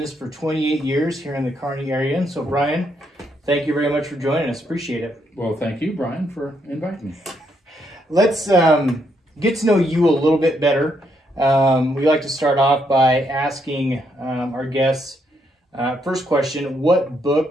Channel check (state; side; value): normal; both; correlation 0.76